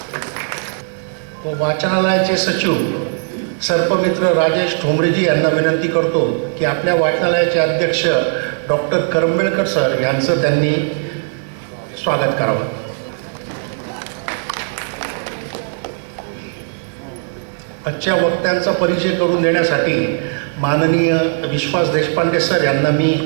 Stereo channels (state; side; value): silent; left; 58 dB below the other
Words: व वाचनालयाचे सचिव सर्पमित्र राजेश ठोंबरेजी यांना विनंती करतो की आपल्या वाचनालयाचे अध्यक्ष डॉक्टर करंबेळकर सर यांचं त्यांनी स्वागत करावं। आजच्या वक्त्यांचा परिचय करून देण्यासाठी माननीय विश्वास देशपांडे सर यांना मी